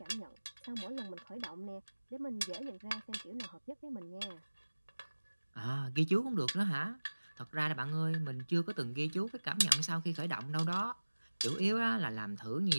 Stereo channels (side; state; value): both; inverted; correlation -1.00